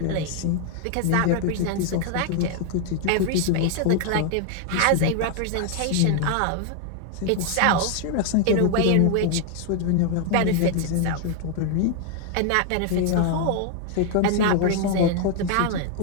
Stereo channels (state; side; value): different; both; correlation 0.01